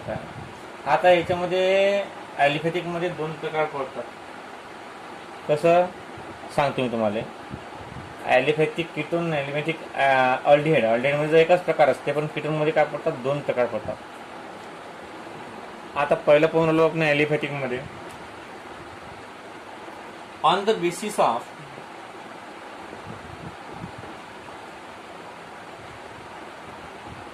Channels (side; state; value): both; identical; correlation 1.00